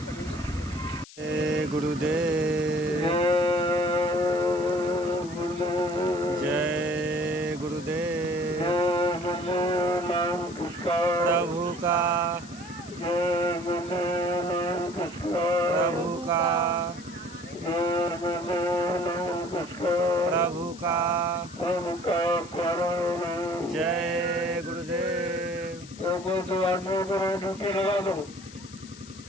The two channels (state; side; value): noise; left; hiss, 19 dB below the sound